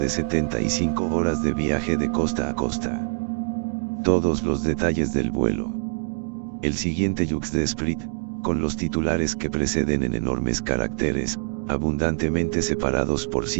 75 horas de viaje de costa a costa. Todos los detalles del vuelo. El siguiente Jux de Esprit, con los titulares que preceden en enormes caracteres, abundantemente separados por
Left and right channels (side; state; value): left; silent; 62 dB below the other